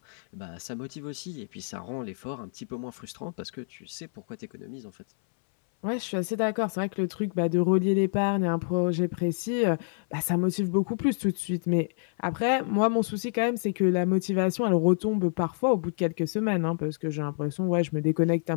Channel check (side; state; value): right; silent; 59 dB below the other